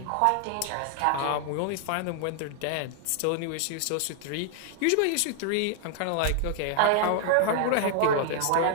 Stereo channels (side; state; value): both; different; correlation 0.00